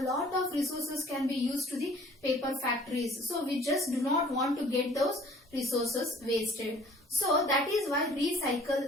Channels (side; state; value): both; normal; correlation 0.53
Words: lot of resources can be used to the paper factories. So, we just do not want to get those resources wasted. So, that is why